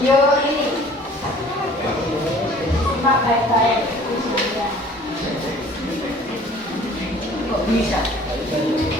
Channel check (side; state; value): both; normal; correlation 0.51